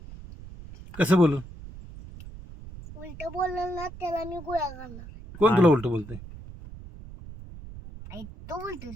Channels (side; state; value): right; noise; rumble, 14 dB below the sound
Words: कसं बोलू? उलट बोलल ना त्याला मी गोळ्या घालणार. कोण तुला उलट बोलते? आई तू